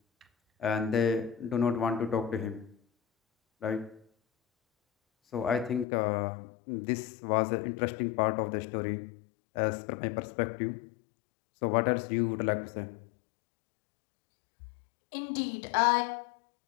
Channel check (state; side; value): drops out; right; at 5.9 s